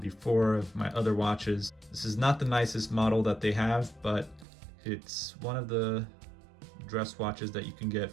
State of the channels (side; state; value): left; drops out; at 4.5 s